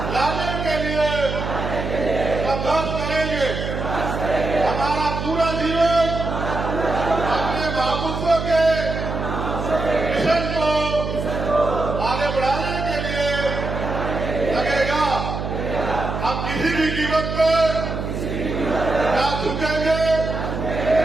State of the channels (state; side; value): noise; right; hum, 4 dB below the sound